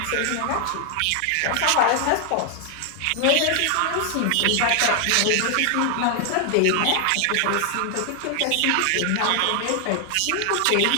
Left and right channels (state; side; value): different; both; correlation 0.00